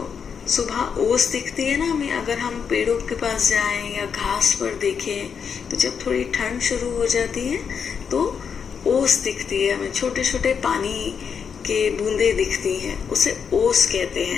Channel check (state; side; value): quieter; right; 6.7 dB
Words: सुबह ओस दिखती है ना हमें, अगर हम पेड़ों के पास जाएं या घास पर देखें, तो जब थोड़ी ठंड शुरू हो जाती है तो ओस दिखती है हमें, छोटे छोटे पानी के बूंदे दिखती हैं, उसे ओस कहते